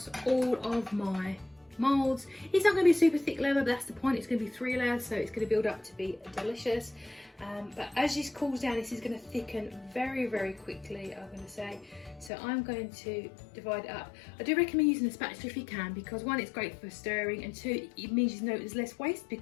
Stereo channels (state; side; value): drops out; right; at 12.3 s